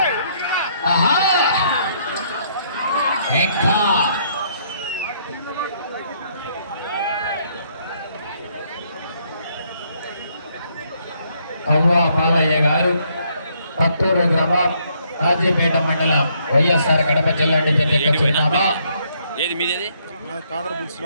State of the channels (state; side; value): inverted; both; correlation -0.70